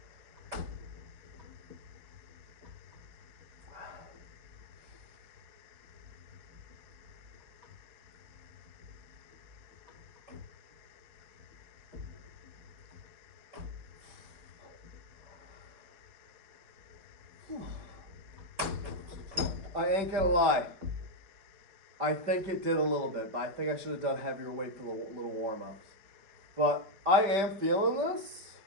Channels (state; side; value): late; left; 5.0 ms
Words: I ain't gonna lie. I think it did a little bit, but I think I should have done heavier weight for the little warm-ups. But I am feeling this.